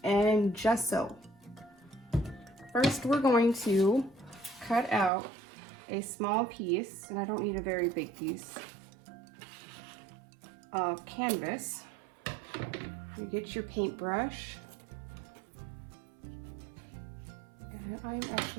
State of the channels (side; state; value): left; drops out; at 5.1 s